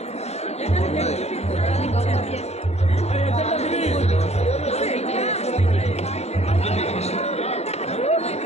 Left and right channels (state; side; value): late; right; 0.31 ms